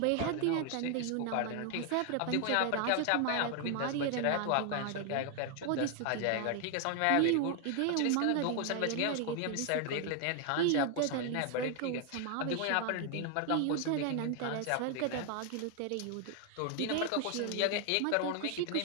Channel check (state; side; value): different; both; correlation 0.01